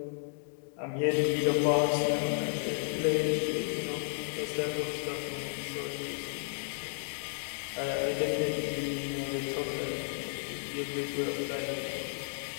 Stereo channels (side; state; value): right; silent; 56 dB below the other